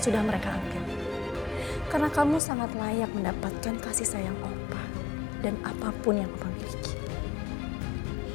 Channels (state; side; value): drops out; right; at 2.4 s